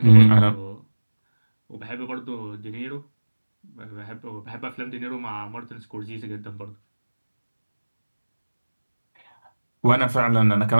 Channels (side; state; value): both; inverted; correlation -1.00